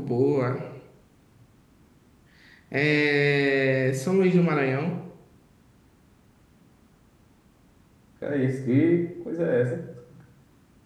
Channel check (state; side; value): identical; both; correlation 1.00